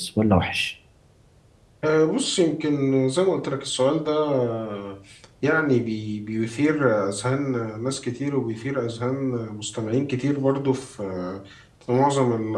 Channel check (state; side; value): identical; both; correlation 1.00